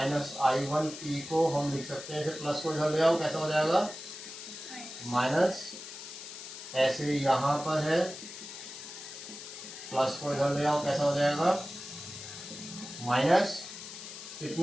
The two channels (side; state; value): left; noise; hiss, 11 dB below the sound